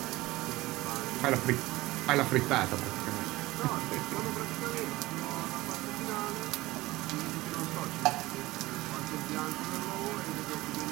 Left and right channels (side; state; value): left; quieter; 19.0 dB